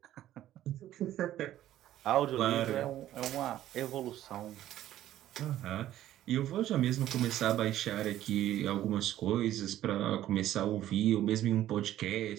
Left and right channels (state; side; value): quieter; left; 13.0 dB